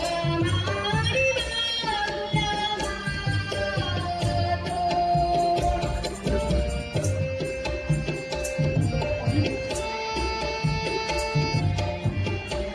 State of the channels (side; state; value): both; identical; correlation 1.00